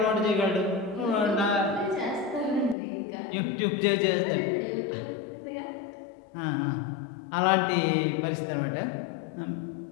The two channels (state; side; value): drops out; right; at 2.8 s